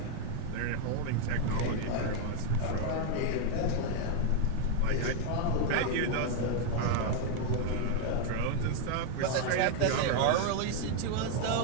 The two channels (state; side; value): different; both; correlation 0.00